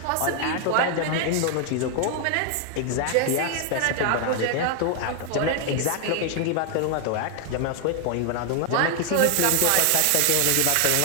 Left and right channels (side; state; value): both; different; correlation 0.00